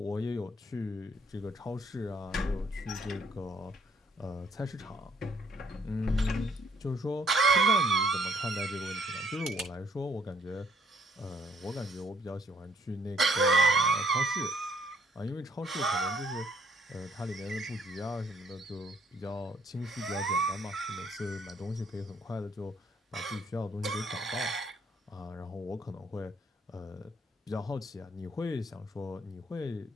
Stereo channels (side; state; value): both; normal; correlation 0.65